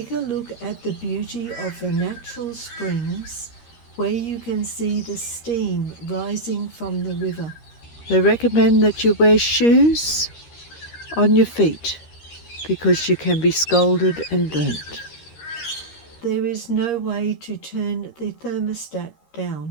a look at the beauty of the natural springs where you can see the steam rising from the river. They recommend that you wear shoes on your feet because you can be scalded and burnt. There is no way to turn the thermostat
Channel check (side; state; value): right; late; 13 ms